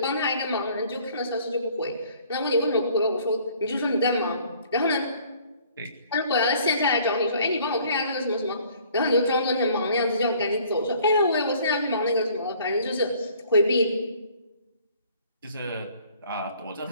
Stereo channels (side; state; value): both; inverted; correlation -0.56